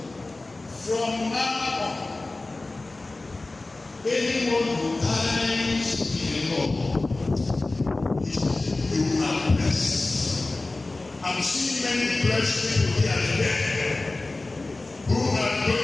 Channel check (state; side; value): quieter; right; 3.1 dB